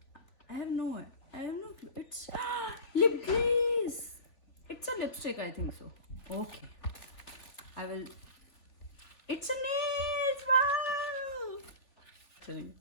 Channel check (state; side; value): late; right; 3.4 ms